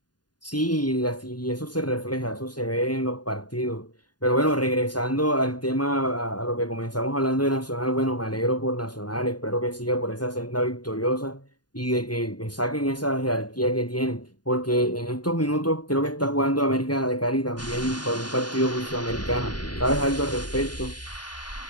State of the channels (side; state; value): right; late; 0.70 ms